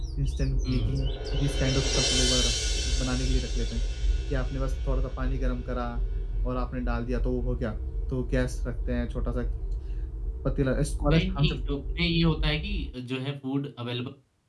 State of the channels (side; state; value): both; identical; correlation 1.00